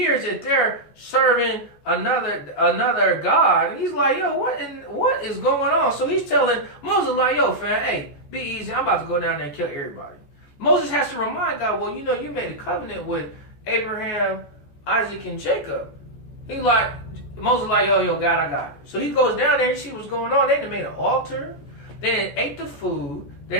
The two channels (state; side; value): late; right; 14 ms